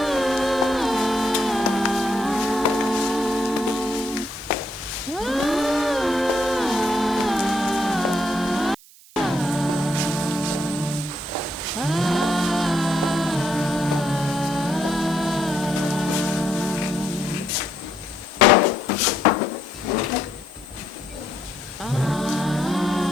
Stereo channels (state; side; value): noise; right; hiss, 24 dB below the sound